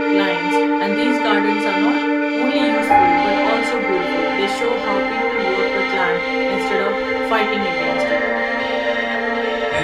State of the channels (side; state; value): both; identical; correlation 1.00